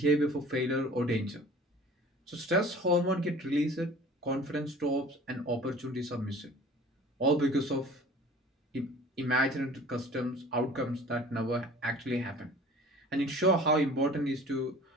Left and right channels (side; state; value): both; normal; correlation 0.46